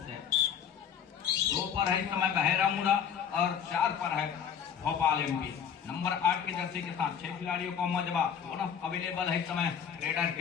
से। 2 पर है इस समय बहेरा मुड़ा और 4 पर है भोपाल एमपी। नंबर 8 की जर्सी के साथ 6 खिलाड़ियों को मजबा बोनस अवेलेबल है इस समय रेडर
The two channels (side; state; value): right; quieter; 8.0 dB